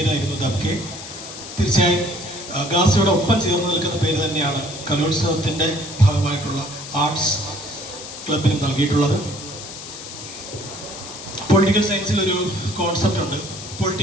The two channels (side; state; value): left; noise; hiss, 12 dB below the sound